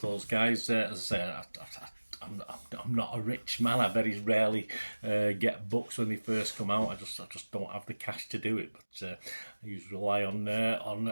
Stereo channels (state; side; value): inverted; both; correlation -1.00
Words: those guys. As I say, I'm not a rich man. I very rarely get books when they first come out. I just don't have the cash to do it. But I usually rely on